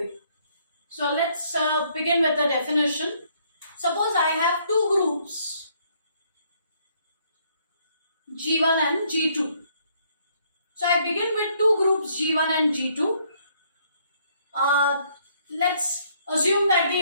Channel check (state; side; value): inverted; both; correlation -0.67